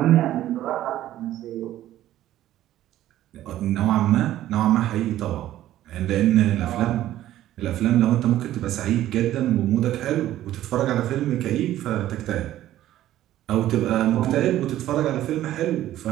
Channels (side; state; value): left; quieter; 13.4 dB